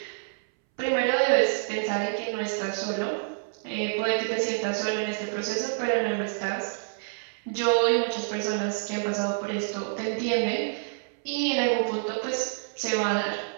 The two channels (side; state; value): left; silent; 60 dB below the other